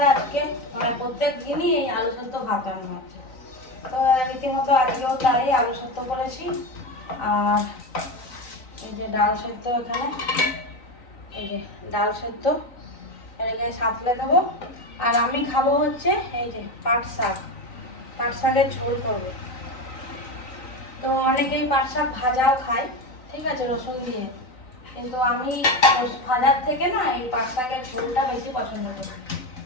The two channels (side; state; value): right; late; 3.9 ms